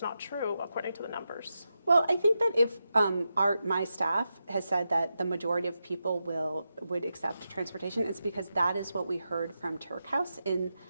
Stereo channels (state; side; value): inverted; both; correlation -0.88